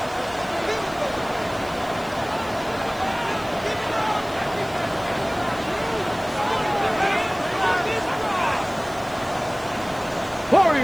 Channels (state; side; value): noise; right; hiss, 21 dB below the sound